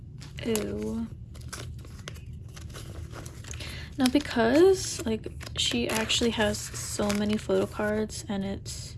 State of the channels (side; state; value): both; identical; correlation 1.00